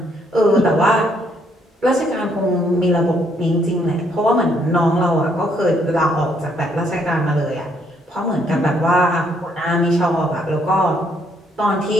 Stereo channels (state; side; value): normal; both; correlation 0.70